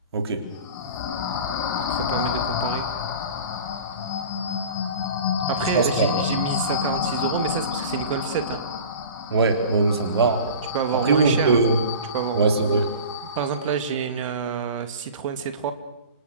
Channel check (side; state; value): both; inverted; correlation -0.38